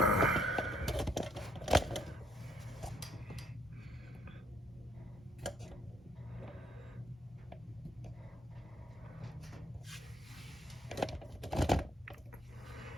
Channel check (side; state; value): both; normal; correlation 0.68